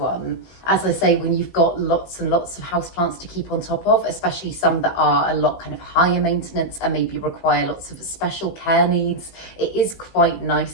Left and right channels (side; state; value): right; late; 17 ms